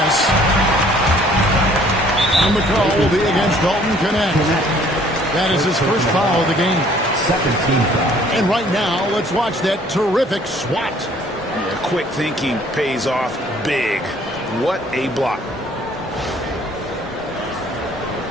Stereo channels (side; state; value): both; normal; correlation 0.58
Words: And the call will be against Dalton Knecht. That is his first foul of the game. Second team foul. And right now, let's watch that terrific swat. Yeah, quick thinking pays off big. What a block.